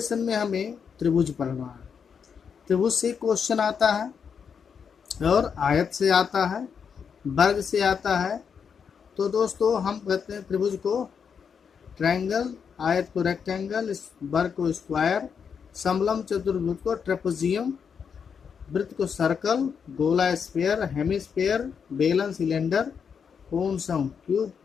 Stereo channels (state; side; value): quieter; right; 6.7 dB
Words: में हमें त्रिभुज पढ़ना है। त्रिभुज से क्वेश्चन आता है और आयत से आता है, वर्ग से आता है। तो दोस्तों हम कहते हैं त्रिभुज को ट्रायंगल, आयत को रेक्टेंगल, वर्ग को स्क्वायर, समलम चतुर्भुज को ट्रेपेजियम, वृत्त को सर्कल, गोला स्फीयर, हेमिस्फीयर, बेलन सिलेंडर, कोन सम क्यूब,